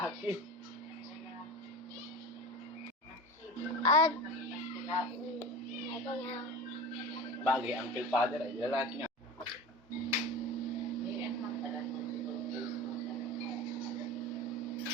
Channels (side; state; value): both; normal; correlation 0.31